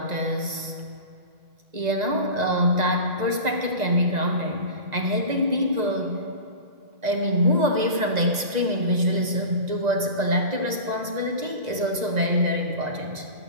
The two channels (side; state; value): left; late; 1.9 ms